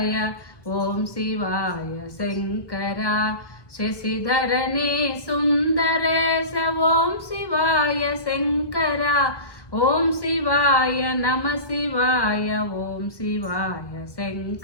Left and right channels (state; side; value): late; right; 1.2 ms